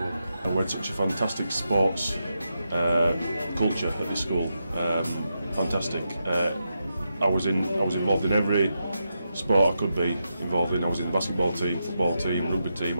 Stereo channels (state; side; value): inverted; both; correlation -0.86